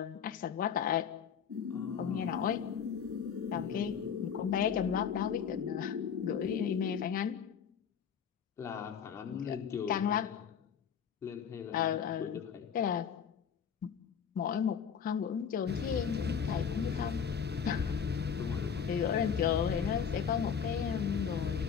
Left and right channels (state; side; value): quieter; right; 7.4 dB